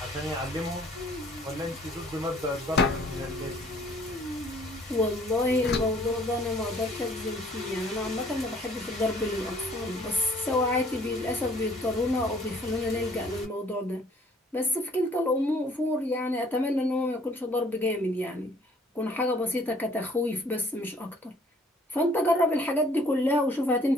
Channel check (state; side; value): normal; both; correlation 0.58